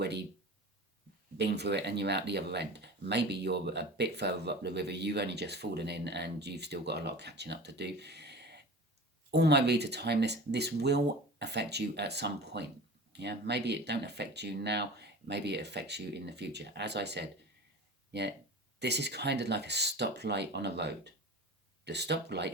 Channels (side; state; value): both; normal; correlation 0.36